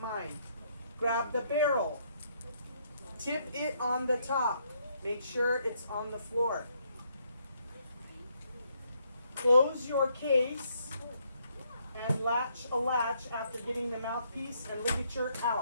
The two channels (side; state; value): both; inverted; correlation -0.72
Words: mine. Grab the barrel. Tip it on the top. Make sure it's on the floor. Close your case and latch a latch after getting the mouthpiece and ligature